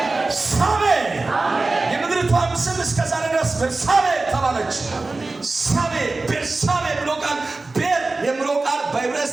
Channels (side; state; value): left; quieter; 3.4 dB